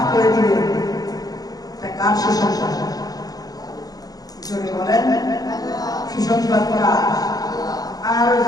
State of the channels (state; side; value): late; right; 0.18 ms